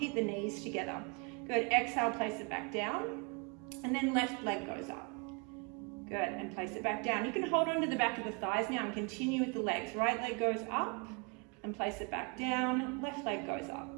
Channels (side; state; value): left; quieter; 33.1 dB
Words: the knees together. Good. Exhale, place it back down. And then left leg goes up. Good. And place it back down. You can hold on to the back of the thighs now and continue with the legs. Right leg goes up and place it back down. Left leg goes up